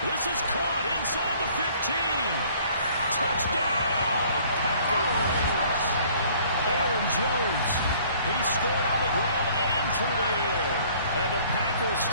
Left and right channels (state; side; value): inverted; both; correlation -0.56